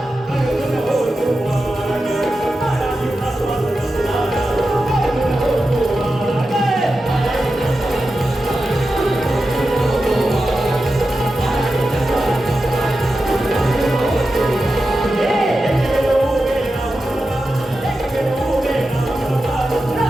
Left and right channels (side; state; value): both; normal; correlation 0.91